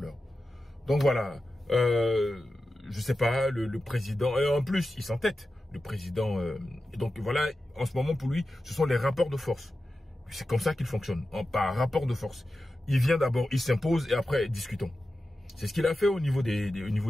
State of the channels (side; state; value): both; normal; correlation 0.92